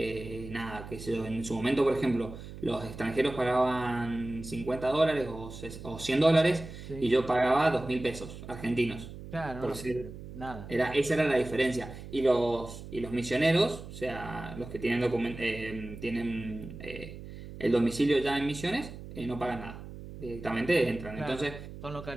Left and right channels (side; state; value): right; noise; hum, 13 dB below the sound